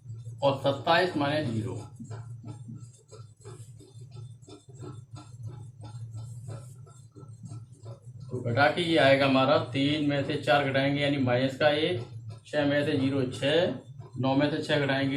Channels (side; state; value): both; identical; correlation 1.00